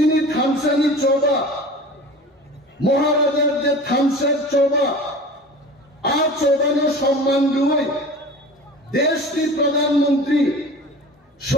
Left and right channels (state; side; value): normal; both; correlation 0.38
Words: থামসানি চৌবা, মহারাজার যে থামসার চৌবা আর চৌবানো সম্মান দুই দেশটির প্রধানমন্ত্রী,